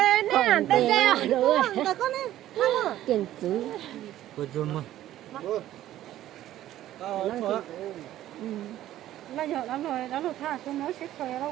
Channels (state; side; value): quieter; left; 13.3 dB